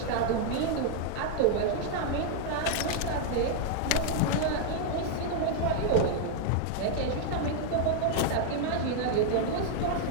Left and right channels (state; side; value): different; both; correlation -0.01